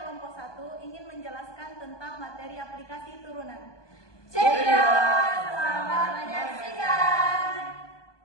1 ingin menjelaskan tentang materi aplikasi turunan. Cekidot, selamat menyaksikan.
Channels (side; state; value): right; late; 1.2 ms